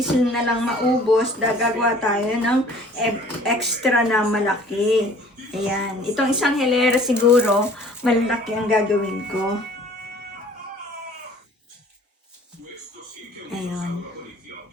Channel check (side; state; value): both; normal; correlation 0.51